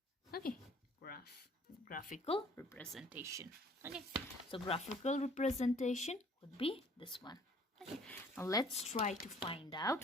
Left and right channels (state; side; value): normal; both; correlation 0.55